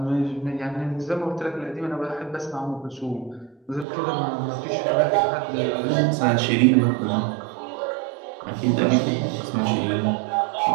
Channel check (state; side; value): drops out; left; at 3.9 s